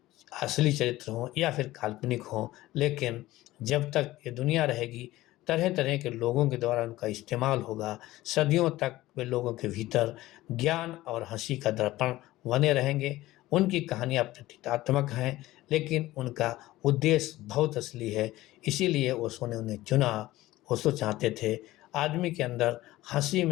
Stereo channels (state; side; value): quieter; right; 16.9 dB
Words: असली चरित्र हों या फिर काल्पनिक हों, लेकिन जब तक ये दुनिया रहेगी तरह तरह के लोगों के द्वारा उनका इस्तेमाल होगा। सदियों तक वे लोगों के भीतर ज्ञान और हंसी का दर्पण बने रहेंगे। उनकी कहानियाँ प्रतीकात्मक हैं, लेकिन उनका उद्देश्य बहुत असली है। इसीलिए ओशो ने उन्हें चुना। ओशो चाहते थे आदमी के अंदर हंसी